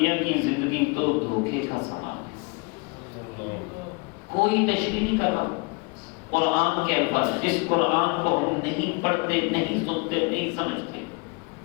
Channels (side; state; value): right; quieter; 29.7 dB